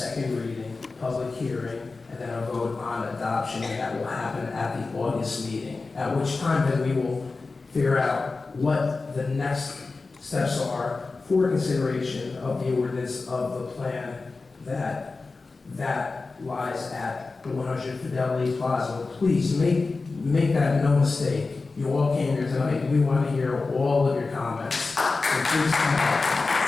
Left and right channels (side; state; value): right; quieter; 3.9 dB